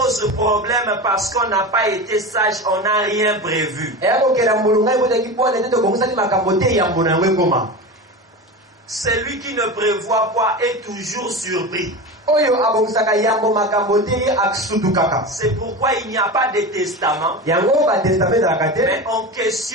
problème parce qu'on n'a pas été sage, on n'a rien prévu. eya kokela mbulu ngai botaki bwana ete tobongisaki makambo te yambo na yango ekoma Celui qui ne prévoit pas est toujours surpris. oyo abongisaka yambo makambo te ye asutukaka C'est pourquoi il n'y a pas de testament, yango batestament ezalaka te mais on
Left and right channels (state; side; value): normal; both; correlation 0.26